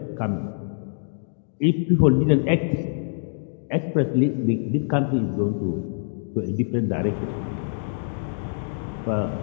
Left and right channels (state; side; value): silent; right; digital silence